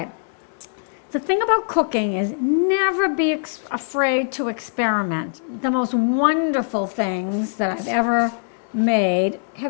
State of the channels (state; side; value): silent; right; 64 dB below the other